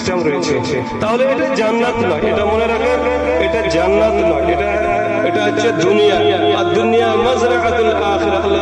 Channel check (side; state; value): both; identical; correlation 1.00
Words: রয়েছে। তাহলে এটা জান্নাত নয়, এটা মনে রাখেন, এটা জান্নাত নয়, এটা হচ্ছে দুনিয়া। আর দুনিয়া মাজরাআতুল আখিরাহ। আল্লাহ